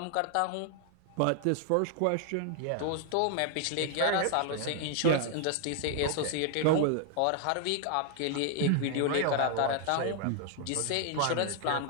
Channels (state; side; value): different; both; correlation 0.00